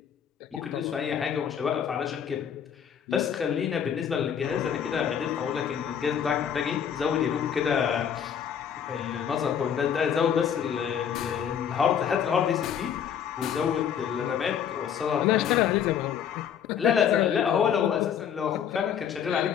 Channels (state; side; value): quieter; right; 8.4 dB